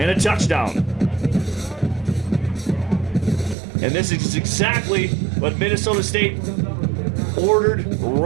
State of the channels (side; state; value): left; drops out; at 3.6 s